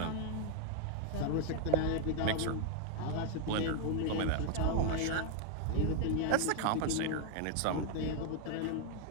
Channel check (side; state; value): both; different; correlation 0.01